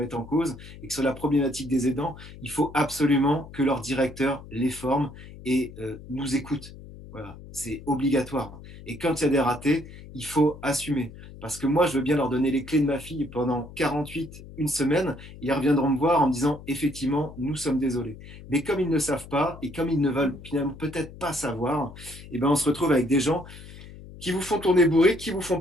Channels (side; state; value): left; noise; hum, 16 dB below the sound